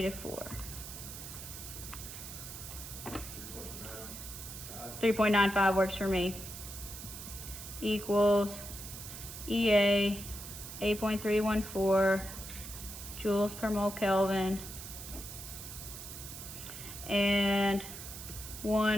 4. 3.95 works for me. Equals EA 8.314 joules per mole Kelvin, and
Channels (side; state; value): right; noise; hiss, 10 dB below the sound